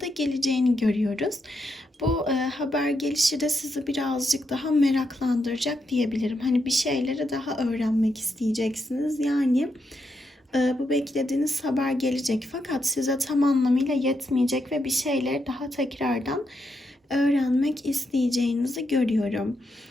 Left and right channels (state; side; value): normal; both; correlation 0.82